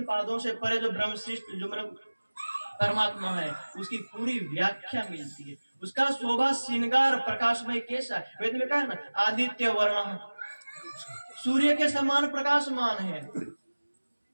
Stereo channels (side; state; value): both; inverted; correlation -1.00